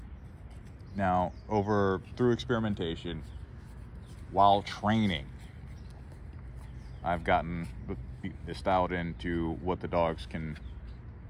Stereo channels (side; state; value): both; identical; correlation 1.00